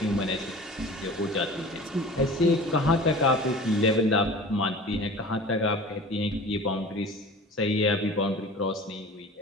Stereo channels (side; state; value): both; normal; correlation 0.39